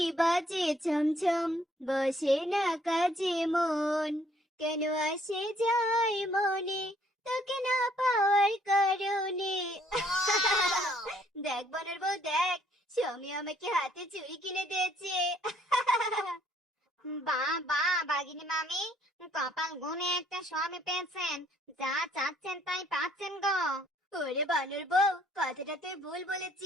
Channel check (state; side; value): normal; both; correlation 0.65